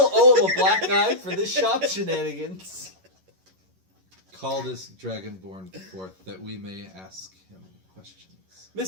owe him a black eye for this shop shenanigans. Call this dragonborn forth that we may ask him questions.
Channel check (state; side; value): late; left; 11 ms